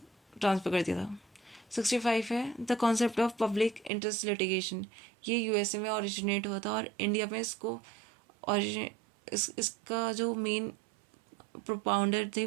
ट्रांसफर कर दिया था। 65 है, the concept of public interest litigation, ये यूएसए में ओरिजिनेट हुआ था और इंडिया में इसको इसका जो मेन प्रोपाउंडर थे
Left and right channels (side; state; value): left; drops out; at 3.9 s